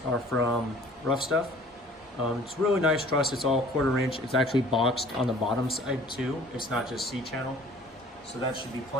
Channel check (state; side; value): normal; both; correlation 0.51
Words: are from Rough Stuff. It's really nice truss. It's all 1/4 inch. It's actually boxed on the bottom side too. It's not just C-channel. So that should be